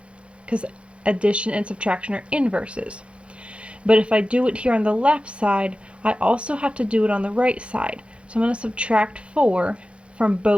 because addition and subtraction are inverses. But if I do it here on the left side, I also have to do it on the right side. So I'm going to subtract 4 from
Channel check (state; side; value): late; left; 0.059 ms